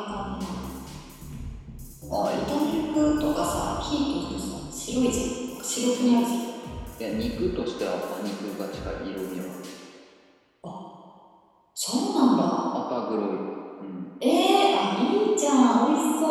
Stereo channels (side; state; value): both; identical; correlation 1.00